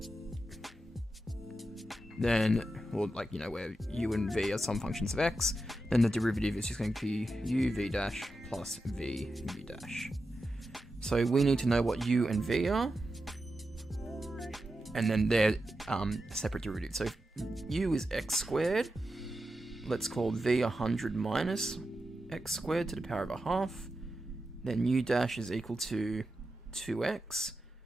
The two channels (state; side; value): normal; both; correlation 0.90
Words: then, or like, you know, where u and v are some functions of x, then the derivative is just going to be u v dash plus v u dash. So we need to know what u and v are. and then they're separate derivatives. So if u is x squared, let's call v 100 minus x squared to the power of a half. Then u dash is equal to 2x,